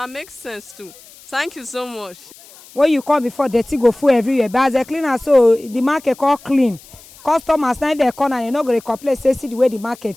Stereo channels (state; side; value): noise; left; hiss, 22 dB below the sound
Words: make sense too. Thank you so much. When you come before, dirty go full everywhere. But as a cleaner, so the market all clean. Customers now they come and they not going to complain. Say see the way the